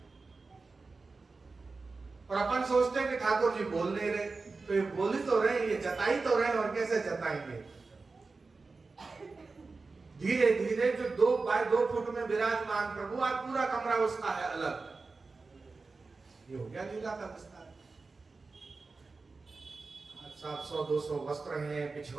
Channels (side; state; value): left; quieter; 4.0 dB